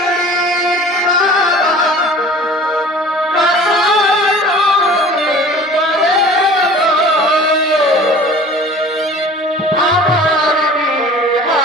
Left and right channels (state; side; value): normal; both; correlation 0.44